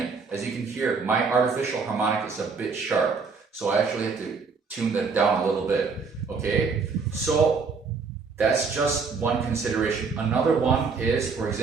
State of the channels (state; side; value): quieter; left; 4.9 dB